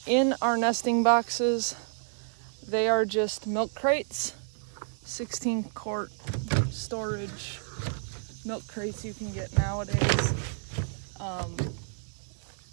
In our nesting boxes, they are just milk crates, 16 quart storage milk crates you can get nowadays.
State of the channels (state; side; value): silent; left; 58 dB below the other